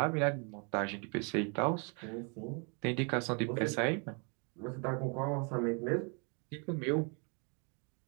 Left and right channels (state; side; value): quieter; left; 35.8 dB